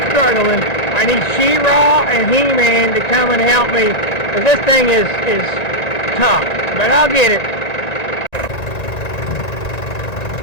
Struggling. I need She-Ra and He-Man to come and help me, because this thing is tough, but I'll get it.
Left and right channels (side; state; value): right; late; 1.9 ms